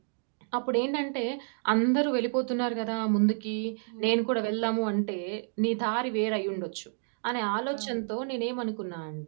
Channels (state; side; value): silent; left; digital silence